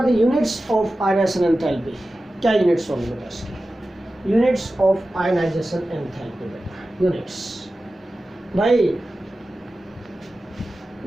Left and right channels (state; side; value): normal; both; correlation 0.94